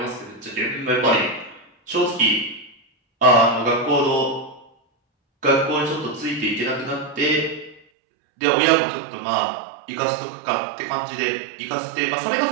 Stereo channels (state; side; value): drops out; left; at 7.8 s